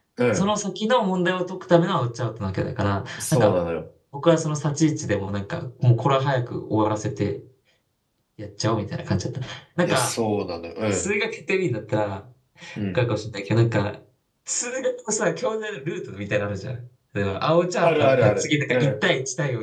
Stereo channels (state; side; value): identical; both; correlation 1.00